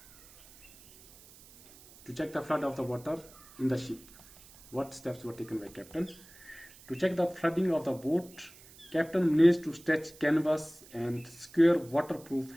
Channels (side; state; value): right; noise; hiss, 22 dB below the sound